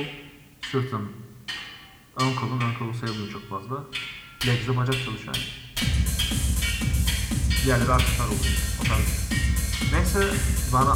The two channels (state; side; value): identical; both; correlation 1.00